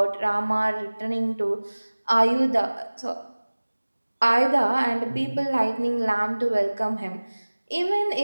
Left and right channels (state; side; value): inverted; both; correlation -1.00